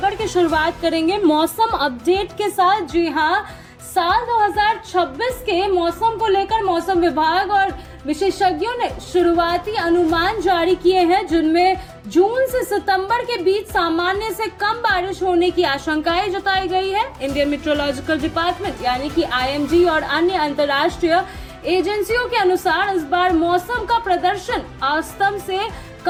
की शुरुआत करेंगे मौसम अपडेट के साथ। जी हाँ, साल 2026 के मौसम को लेकर मौसम विभाग और विशेषज्ञों ने शुरुआती अनुमान जारी किए हैं, जिनमें जून से सितंबर के बीच सामान्य से कम बारिश होने की आशंकाएं जताई गई है। इंडियन मेट्रोलॉजिकल डिपार्टमेंट यानी कि IMD और अन्य अंतर्राष्ट्रीय एजेंसियों के अनुसार इस बार मौसम का प्रदर्शन औसतन से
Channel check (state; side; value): identical; both; correlation 1.00